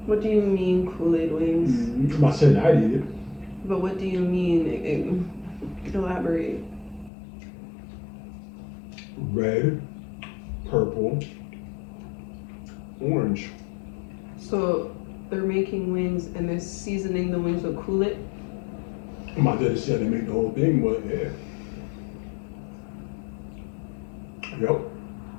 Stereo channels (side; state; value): right; drops out; at 7.1 s